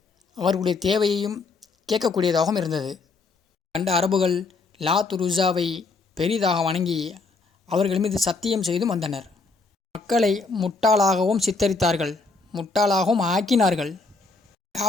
அவர்களுடைய தேவையையும் கேட்கக்கூடியதாகவும் இருந்தது. கண்ட அரபுகள் லாத் உஸ்ஸாவை பெரிதாக வணங்கி அவர்கள் மீது சத்தியம் செய்தும் வந்தனர். மக்களை முட்டாளாகவும் சித்தரித்தார்கள், முட்டாளாகவும் ஆக்கினார்கள்.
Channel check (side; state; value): right; quieter; 4.0 dB